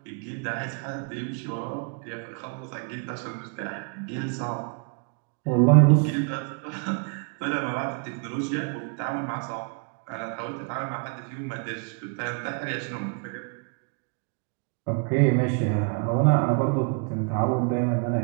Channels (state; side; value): quieter; left; 38.1 dB